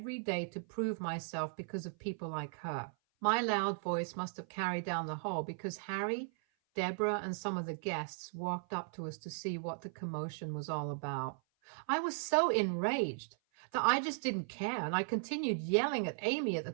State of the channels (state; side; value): silent; left; 53 dB below the other